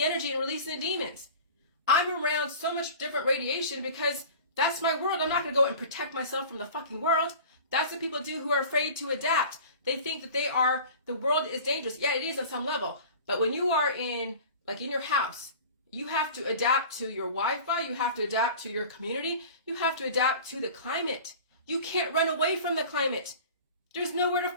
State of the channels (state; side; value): inverted; both; correlation -0.39